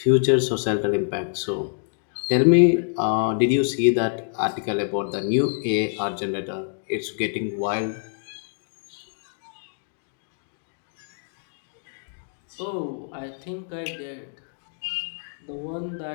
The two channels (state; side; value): silent; right; digital silence